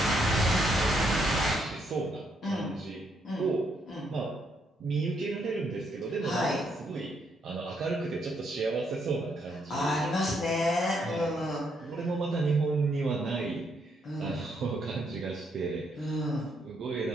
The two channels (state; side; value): normal; both; correlation 0.74